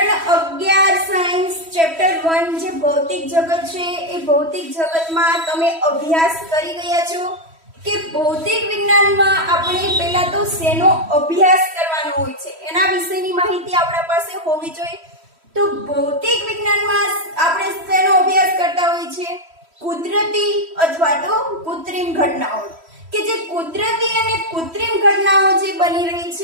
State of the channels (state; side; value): late; left; 3.1 ms